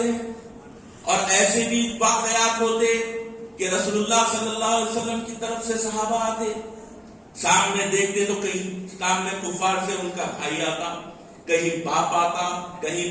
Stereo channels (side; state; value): both; identical; correlation 1.00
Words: اور ایسے بھی واقعات ہوتے کہ رسول اللہ صلی اللہ علیہ وسلم کی طرف سے صحابہ آتے، سامنے دیکھتے تو کہیں سامنے کفار سے ان کا بھائی آتا، کہیں باپ آتا،